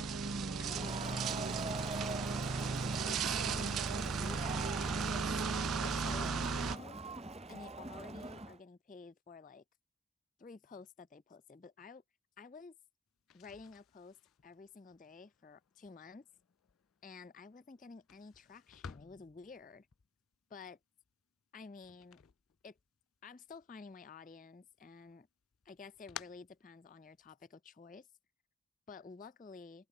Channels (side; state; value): left; quieter; 3.4 dB